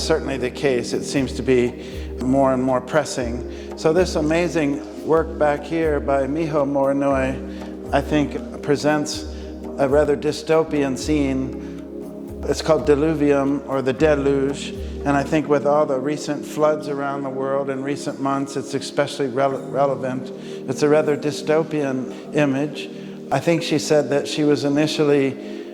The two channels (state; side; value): identical; both; correlation 1.00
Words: certainly the case. It seems to be more and more pressing. So this amazing work back here by Miho Morinoi, I think, presents a rather dystopian scene. It's called Deluvium, or the Deluge. And I think with all the recent floods around the world in recent months, it's especially relevant. It's a rather dystopian image. I think she said that she was initially,